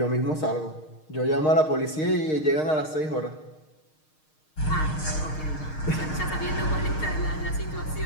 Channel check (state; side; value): late; right; 6.5 ms